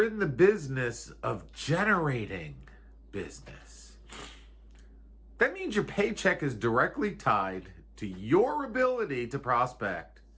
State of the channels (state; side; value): identical; both; correlation 1.00